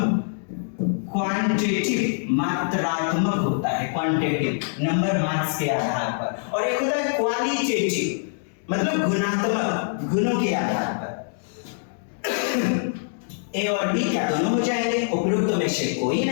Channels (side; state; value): right; silent; digital silence